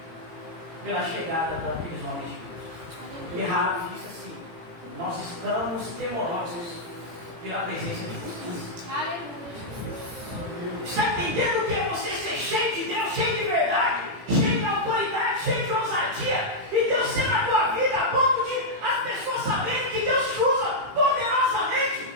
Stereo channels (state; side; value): late; left; 18 ms